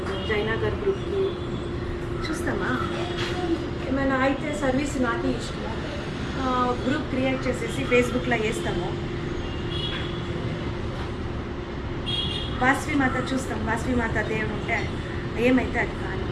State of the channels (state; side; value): identical; both; correlation 1.00